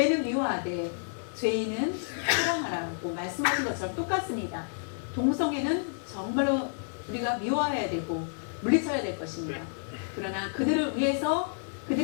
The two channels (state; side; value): silent; right; 58 dB below the other